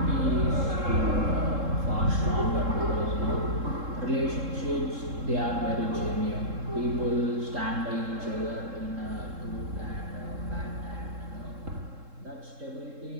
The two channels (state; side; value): late; left; 3.7 ms